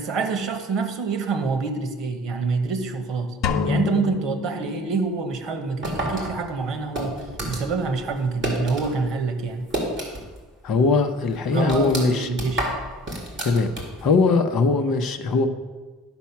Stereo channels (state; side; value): normal; both; correlation 0.47